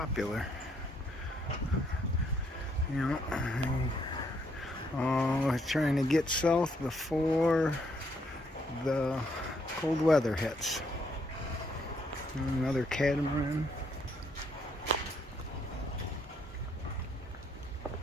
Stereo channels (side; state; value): both; normal; correlation 0.72